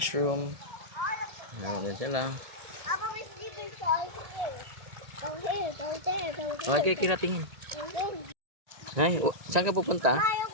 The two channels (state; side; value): late; left; 1.9 ms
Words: Meron din sila. Papa, may sleeping siya. Go here, go there, go there. Okay, kiratingin. Go there. Ay, saan ka pupunta?